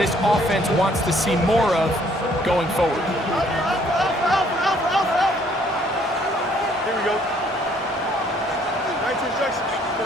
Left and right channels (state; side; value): normal; both; correlation 0.63